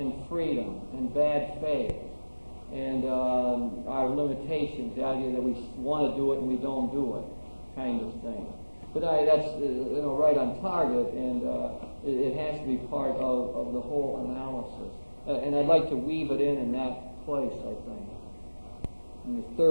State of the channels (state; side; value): inverted; both; correlation -1.00